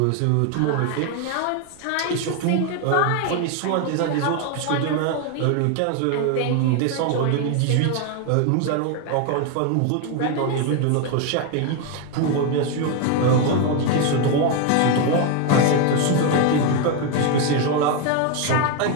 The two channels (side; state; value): both; different; correlation 0.01